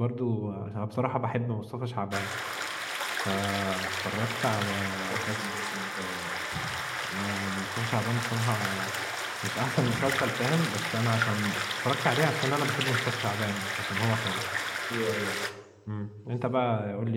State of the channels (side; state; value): both; identical; correlation 1.00